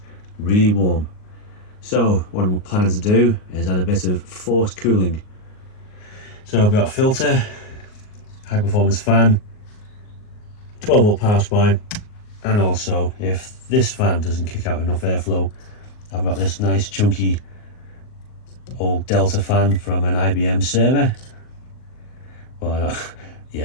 really warm. So what I'm planning to do is add a bit of forced cooling. So I've got a filter, high performance fan, 12 volt power supply, and also if this fan doesn't kick out enough airflow, I've got this nice chunky old Delta fan from an IBM server. Well,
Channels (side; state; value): right; late; 38 ms